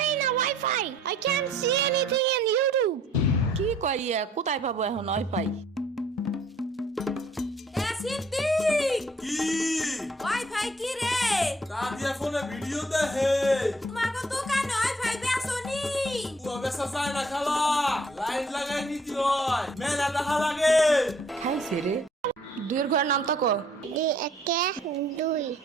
না wifi. I can't see anything in YouTube. কি কইয়া কোথায় পাবো এখন ওয়াইফাই? সিদ্দিক কি ওয়াইফাই কি রে? দাদিয়া ফোনে ভিডিও দেখে তোমাকে দোকানে ওয়াইফাই বেসনি? ও বেসা যায় না খালা, লাইন লাগাই নিতে হয়, মেলা দেখা লাগে। খাইছে রে। দুইয়ের ঘরের নাম তো কো। দুই একে দুই,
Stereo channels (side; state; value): both; normal; correlation 0.59